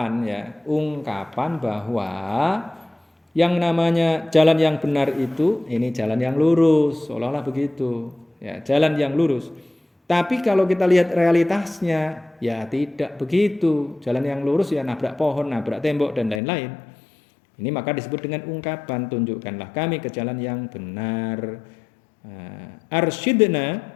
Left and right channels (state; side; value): drops out; right; at 16.4 s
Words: ya. Ungkapan bahwa yang namanya jalan yang benar itu ini jalan yang lurus, seolah-olah begitu. Ya, jalan yang lurus. Tapi kalau kita lihat realitasnya, ya tidak begitu. Jalan yang lurus ya nabrak pohon, nabrak tembok, dan lain-lain. Ini maka disebut dengan ungkapan, tunjukkanlah kami ke jalan yang benar. Arsyidna,